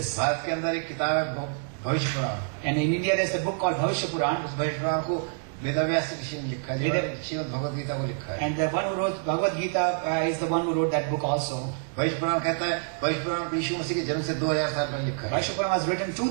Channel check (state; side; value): silent; left; 60 dB below the other